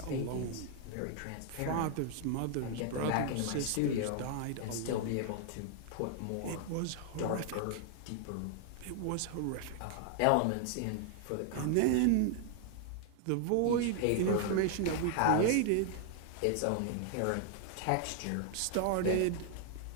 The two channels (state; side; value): different; both; correlation 0.00